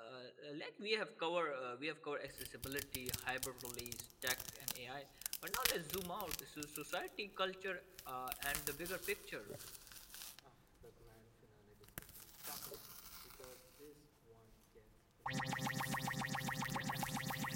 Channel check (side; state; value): both; identical; correlation 1.00